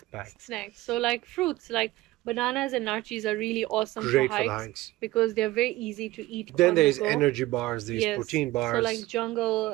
So like fruits, like Bananas and nachos are really awesome for Great for the hikes hikes. because they're very easy to eat Then on the there's go. energy bars, there's Yes. protein So like bars.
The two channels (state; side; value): quieter; left; 18.1 dB